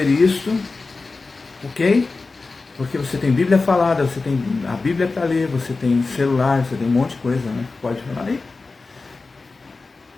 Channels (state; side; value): quieter; right; 3.8 dB